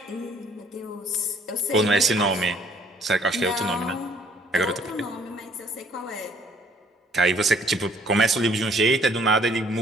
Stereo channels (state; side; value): normal; both; correlation 0.61